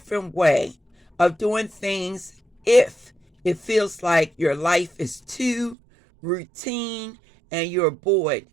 way of doing things if it feels like your life is too routine and you're bored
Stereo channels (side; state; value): left; drops out; at 5.8 s